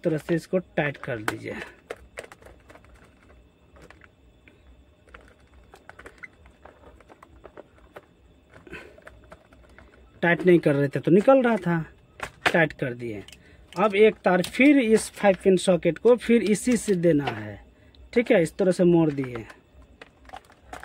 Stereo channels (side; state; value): both; identical; correlation 1.00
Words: तरह से इसको टाइट कर दीजिए। टाइट नहीं कर रहे थे तो निकल रहा था, टाइट कर दिए। अब एक तार फिर इस 5 पिन सॉकेट को फिर इसी से देना है, ठीक है। इस तरह से मोड़ दिए।